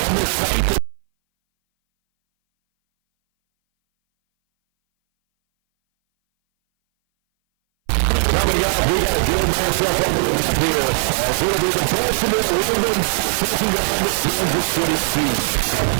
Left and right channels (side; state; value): left; silent; 61 dB below the other